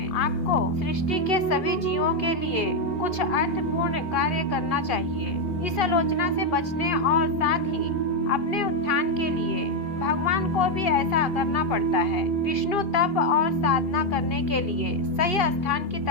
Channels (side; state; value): right; late; 2.5 ms